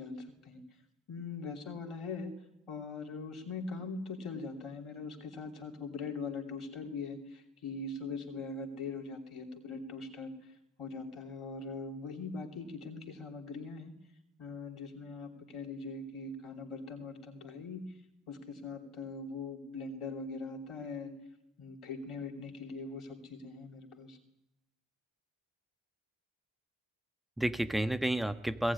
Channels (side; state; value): both; normal; correlation 0.58